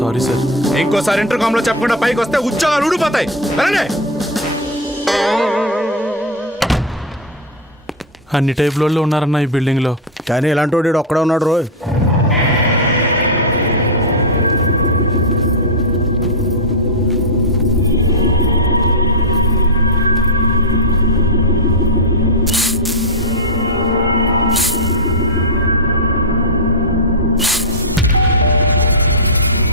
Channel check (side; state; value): both; normal; correlation 0.03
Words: sir. ఇంకోసారి ఇంటర్కామ్ లో చెప్పకుండా పైకి వస్తే ఉద్యోగాలు ఊడిపోతాయి. వెళ్ళండి. అన్ని టైప్ లో ఉన్నారన్న ఈ బిల్డింగ్ లో. కానీ ఇలాంటి వాడు ఒక్కడే ఉన్నాడు రోయ్.